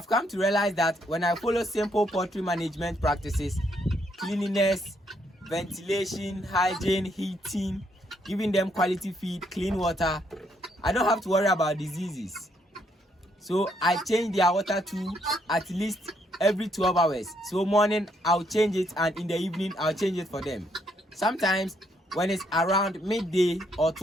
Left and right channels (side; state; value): both; normal; correlation 0.73